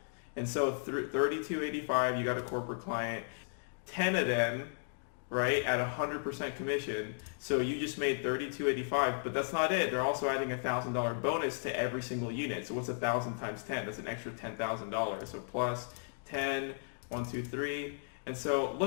And so 3285, you got a corporate client, 10 of them, right, at 100% commission. So you just made $32.85, but that's not it. They're also adding $1,000 bonus to every single unit. So what's 1,000 times 10? That's an extra $10,000. So plus 10, 1, 2, 3. And so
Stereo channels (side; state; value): right; silent; digital silence